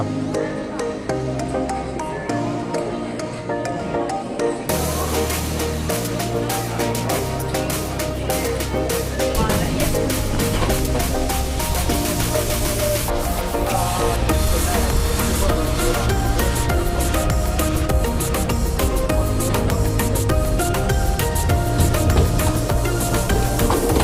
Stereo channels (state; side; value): identical; both; correlation 1.00